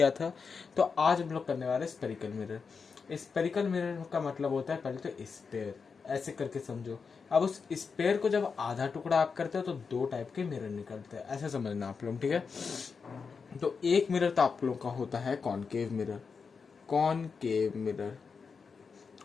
था, तो आज हम लोग करने वाले स्पेरिकल मिरर। स्पेरिकल मिरर का मतलब होता है, पहले तो स्पेयर, ऐसे करके समझो। अब उस स्पेयर को जब आधा टुकड़ा आप करते हो तो दो टाइप के मिरर निकलते हैं, ऐसे समझना आप लोग, ठीक है। तो एक मिरर तो आप लोग का होता है कॉनकेव मिरर, कॉनकेव मिरर,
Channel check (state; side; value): quieter; right; 5.4 dB